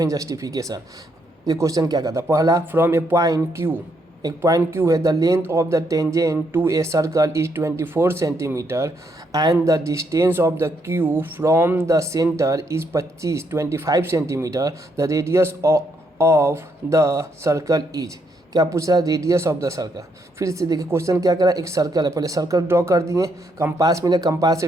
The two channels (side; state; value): both; normal; correlation 0.75